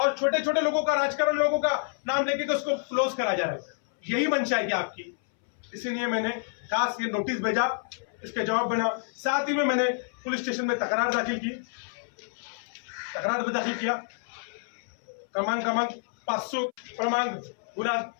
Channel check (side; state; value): right; silent; 59 dB below the other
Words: छोटे छोटे लोगों का, राजकारण लोगों का नाम लेके तो उसको क्लोज करा जा रहा है। यही मंशा है क्या आपकी? इसीलिए मैंने खास ये नोटिस भेजा, इसके जवाब बना। साथ ही में मैंने पुलिस स्टेशन में तकरार दाखिल किया। क्रमांक 500 क्रमांक गुना